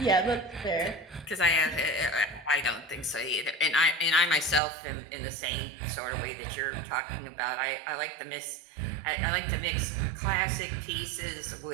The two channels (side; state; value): left; drops out; at 4.6 s